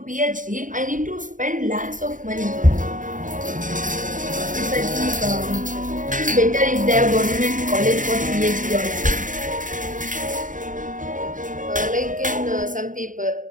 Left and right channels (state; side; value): late; left; 0.38 ms